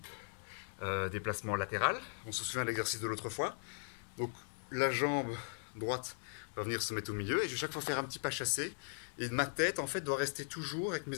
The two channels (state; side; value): silent; right; digital silence